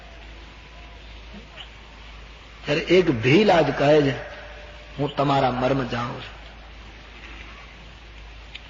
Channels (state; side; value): identical; both; correlation 1.00